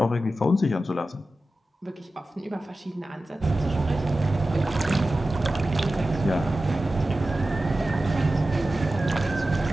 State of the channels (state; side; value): normal; both; correlation 0.94